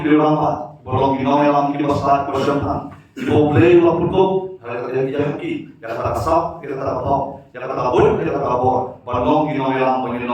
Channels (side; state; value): both; identical; correlation 1.00